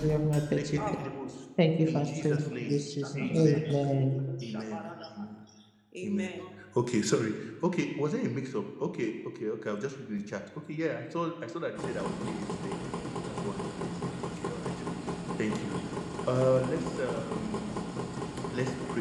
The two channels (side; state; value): both; identical; correlation 1.00